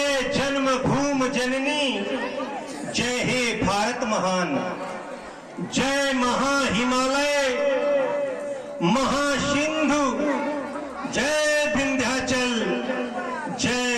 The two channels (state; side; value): identical; both; correlation 1.00